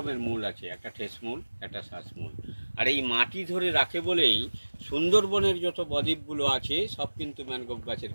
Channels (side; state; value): both; inverted; correlation -1.00